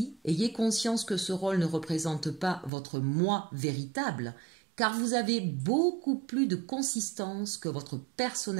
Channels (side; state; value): left; drops out; at 2.7 s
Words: ayez conscience que ce rôle ne représente pas votre moi véritable, car vous avez beaucoup plus de consistance que votre